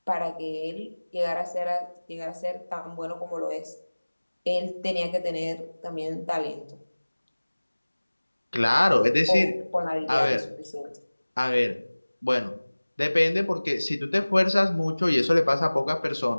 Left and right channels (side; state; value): both; inverted; correlation -1.00